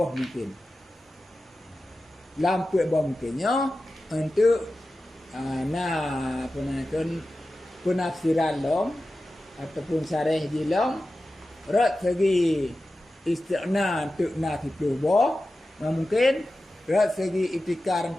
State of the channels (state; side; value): normal; both; correlation 0.94